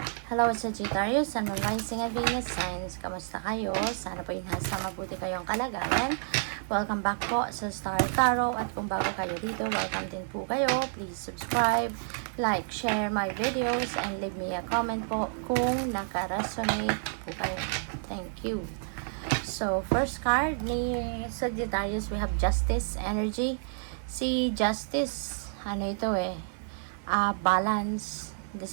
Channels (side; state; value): left; silent; 58 dB below the other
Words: Hello, Sagittarius and Rising at Venus Signs. Kamusta kayo? Sana po nasa mabuti kayong kalagayan. Welcome back po sa Star Tarot. At kung bago kayo dito, welcome din po kayo. Please subscribe, like, share my videos, and leave me a comment po kung naka-resonate po kayo. Thank you. So, first card ni Sagittarius, we have Justice Energy. Si Justice, ano ito balance.